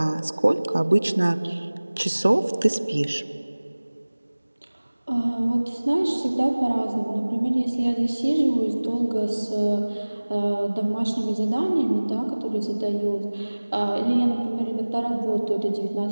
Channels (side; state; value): both; inverted; correlation -1.00